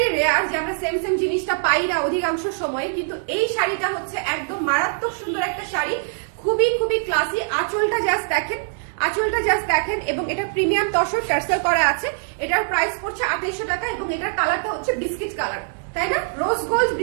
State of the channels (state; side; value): silent; left; digital silence